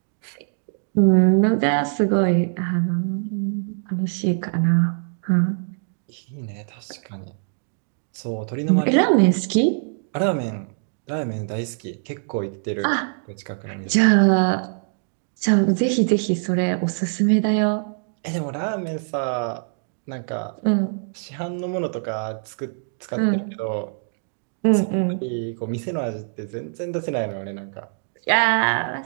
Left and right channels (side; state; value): left; silent; digital silence